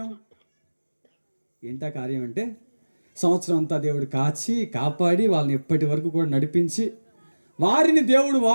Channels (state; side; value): inverted; both; correlation -1.00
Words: కార్యం అంటే సంవత్సరం అంతా దేవుడు కాపాడి వాళ్ళని ఎప్పటి వరకు కూడా నడిపించి వారిని దేవుడు